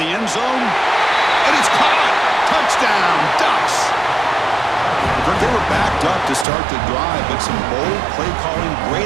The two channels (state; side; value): drops out; left; at 6.5 s